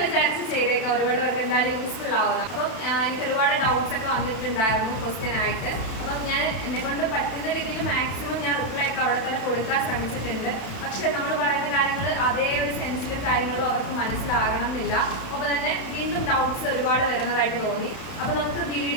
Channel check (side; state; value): right; late; 31 ms